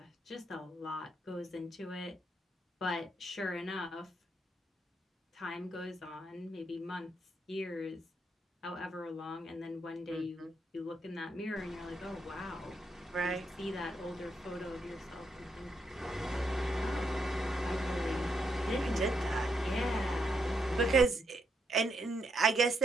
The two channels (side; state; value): both; normal; correlation 0.79